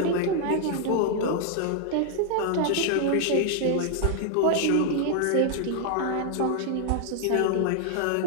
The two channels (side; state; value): both; different; correlation 0.00